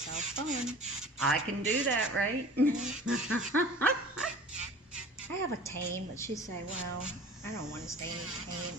fun. I can do that, right? I have a tent, but she said, well, I don't want to stay in the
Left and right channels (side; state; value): both; normal; correlation 0.43